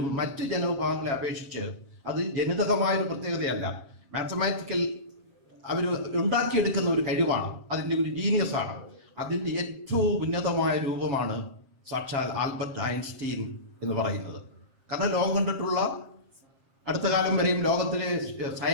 മറ്റ് ജനവിഭാഗങ്ങളെ അപേക്ഷിച്ച് അത് ജനിതകമായൊരു പ്രത്യേകതയല്ല. മാത്തമാറ്റിക്കൽ അവർ ഉണ്ടാക്കിയെടുക്കുന്ന ഒരു കഴിവാണ്, അതിൻ്റെ ഒരു ജീനിയസ് ആണ്. അതിൻ്റെ ഏറ്റവും ഉന്നതമായ രൂപമാണ് സാക്ഷാൽ ആൽബർട്ട് ഐൻസ്റ്റീൻ എന്ന് പറയുന്നത്. കാരണം ലോകം കണ്ടിട്ടുള്ള അടുത്ത കാലം വരെയും ലോകത്തിലെ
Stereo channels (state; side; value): late; left; 7.4 ms